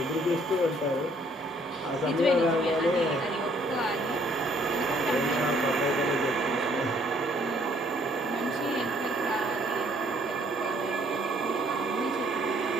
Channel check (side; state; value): both; normal; correlation 0.63